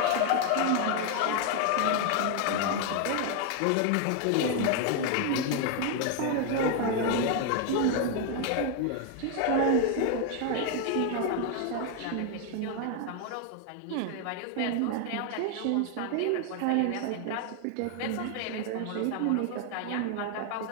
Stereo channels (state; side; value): different; both; correlation 0.01